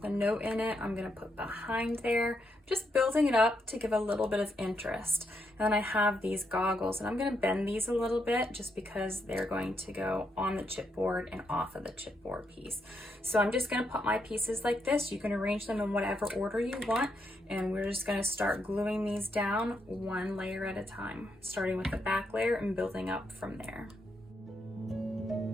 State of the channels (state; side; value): normal; both; correlation 0.79